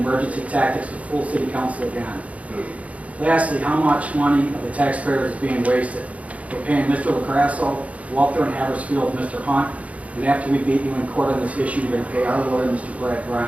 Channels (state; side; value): late; left; 0.066 ms